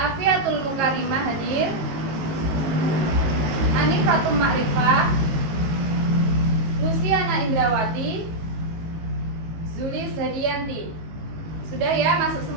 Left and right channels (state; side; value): late; left; 18 ms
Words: Mukarimah hadir. Anifatul Ma'rifah. Luciana Indrawati. Zulis Hadianti. Sudah ya, masuk